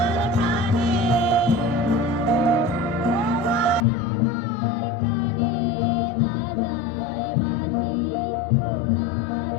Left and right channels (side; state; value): right; drops out; at 3.9 s